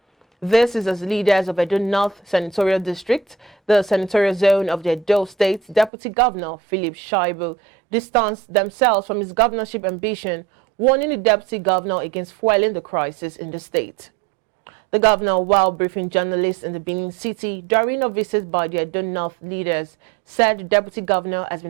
This is as leaders of Edo North Senatorial District, the senatorial zone of the Edo State, Deputy Governor Philip Shaibu distanced themselves from his governorship ambition, warning the Deputy Governor against fueling the crisis in the state. The governor, while briefing journalists in the Benin City during a visit by the Edo North leaders, said the Deputy Governor has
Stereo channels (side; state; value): left; drops out; at 5.9 s